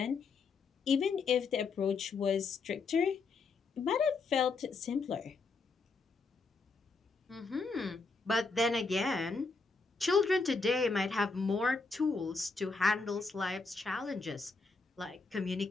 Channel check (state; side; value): quieter; right; 4.2 dB